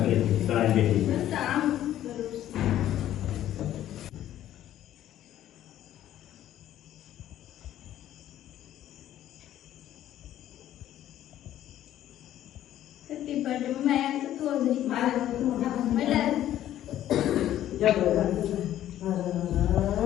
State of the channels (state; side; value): quieter; right; 12.3 dB